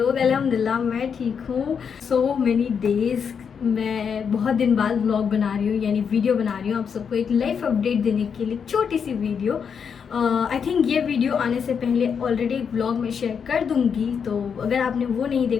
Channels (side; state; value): right; quieter; 6.8 dB